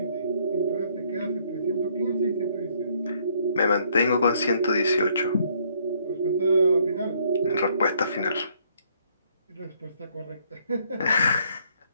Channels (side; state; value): both; inverted; correlation -0.66